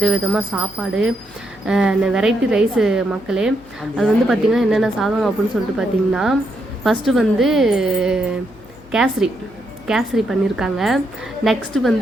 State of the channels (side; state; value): left; noise; hum, 25 dB below the sound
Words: சாப்பாடு வெரைட்டி ரைஸு மக்களே. அது வந்து பார்த்திங்கன்னா என்னென்ன சாதம் அப்படின்னு சொல்லிட்டு பார்த்திங்கன்னா ஃபஸ்ட்டு வந்து கேசரி பண்ணியிருக்காங்க. நெக்ஸ்ட்டு